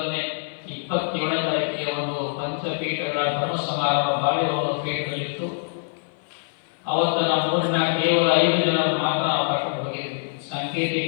27ನೇ ತಾರೀಕಿಗೆ ಒಂದು ಪಂಚಪೀಠಗಳ ಧರ್ಮ ಸಮಾರಂಭ ಬಾಳೆಹೊನ್ನೂರ ಪೀಠದಲ್ಲಿತ್ತು. ಅವತ್ತು ನಮ್ಮ ಊರಿನ ಕೇವಲ 5 ಜನರು ಮಾತ್ರ ನಾವು ಕರ್ಕೊಂಡು ಹೋಗಿದ್ವಿ.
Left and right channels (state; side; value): silent; right; 55 dB below the other